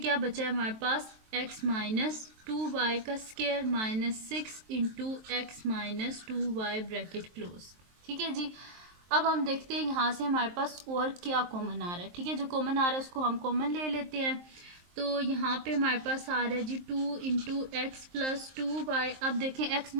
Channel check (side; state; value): left; late; 23 ms